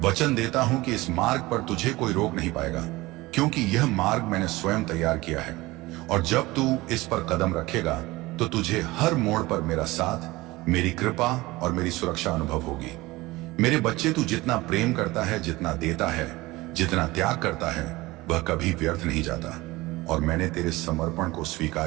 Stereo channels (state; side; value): quieter; left; 20.3 dB